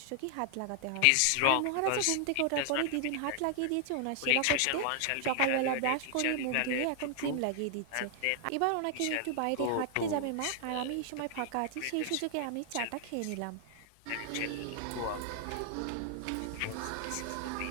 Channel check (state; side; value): different; both; correlation 0.00